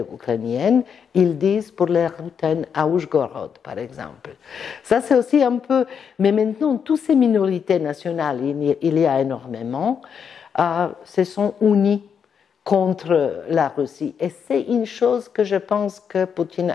ils disent pour les Ruthènes à Oujgorod, par exemple. Ça, c'est aussi un peu. Mais maintenant, toutes ces minorités nationales, il y a énormément, se sont unies contre la Russie. Et c'est une chose que je pense que Poutine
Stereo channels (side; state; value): right; quieter; 7.1 dB